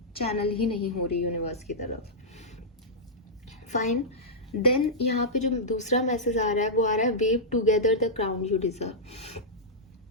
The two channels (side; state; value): both; normal; correlation -0.11